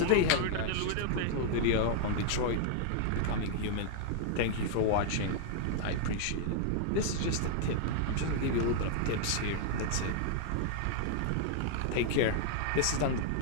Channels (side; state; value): both; different; correlation 0.00